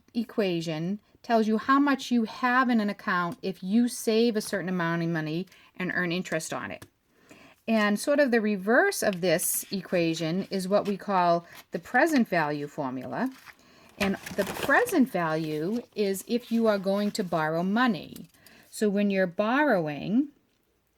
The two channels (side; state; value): both; identical; correlation 1.00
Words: equation tells you how much you have in an account if you save a certain amount of money and earn interest on it. And sort of the reverse of this equation is what we call the present value formula. And the present value is if you are going to borrow money. So when you're borrowing,